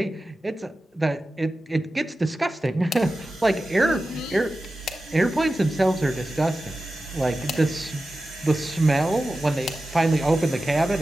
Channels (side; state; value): both; normal; correlation 0.94